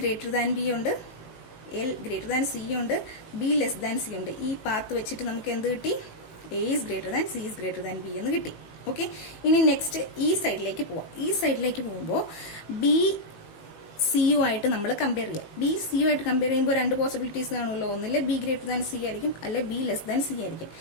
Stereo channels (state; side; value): late; right; 18 ms